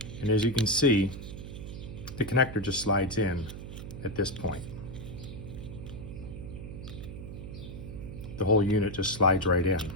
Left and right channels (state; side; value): noise; right; hum, 10 dB below the sound